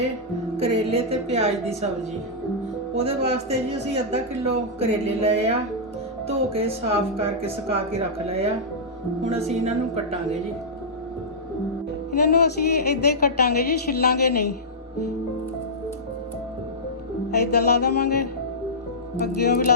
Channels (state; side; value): normal; both; correlation -0.13